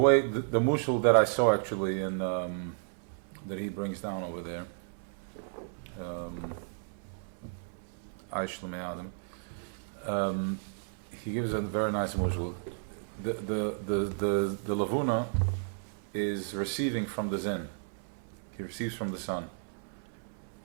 the mushal that I saw actually in that he brings down over there, he gives a very nice mushal. The lavuna is receiving from the zen. He receives from the sun.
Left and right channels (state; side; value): silent; left; 56 dB below the other